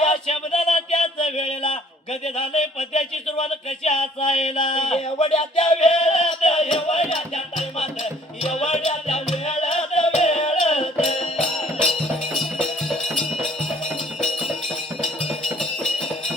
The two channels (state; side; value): normal; both; correlation 0.58